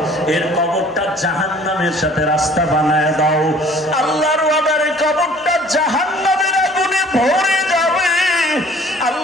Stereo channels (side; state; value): both; normal; correlation 0.52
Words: এর কবরটা জাহান্নামের সাথে রাস্তা বানায় দাও। আল্লাহর ওয়াদারে কবরটা জাহান্নামের আগুনে ভরে যাবে।